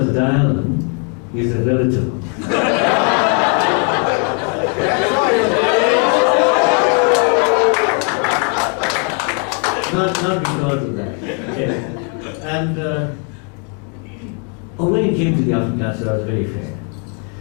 Dialan is a relative. not because of that. Okay. And when it came to the Afrikaans, I was very fair.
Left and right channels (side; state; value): right; quieter; 39.1 dB